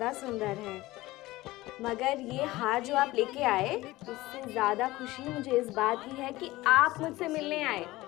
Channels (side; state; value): right; quieter; 18.5 dB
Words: सुंदर है, मगर ये हार जो आप लेके आए, उससे ज़्यादा खुशी मुझे इस बात की है कि आप मुझसे मिलने आए